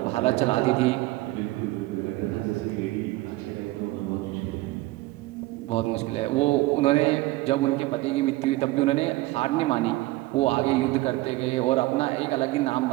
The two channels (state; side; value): quieter; left; 19.1 dB